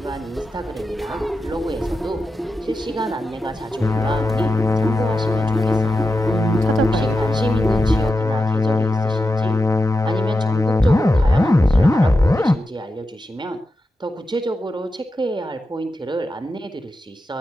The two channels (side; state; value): both; normal; correlation 0.89